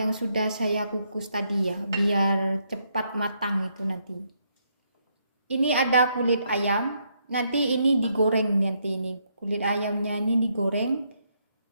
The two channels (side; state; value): both; inverted; correlation -0.75